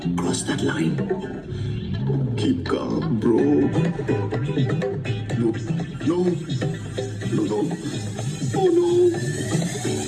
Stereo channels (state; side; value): identical; both; correlation 1.00